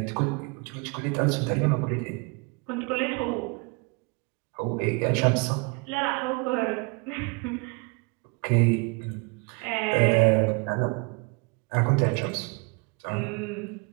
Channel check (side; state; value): left; quieter; 30.1 dB